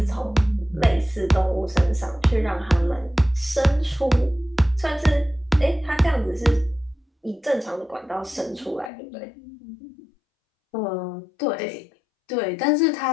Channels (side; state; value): right; drops out; at 8.9 s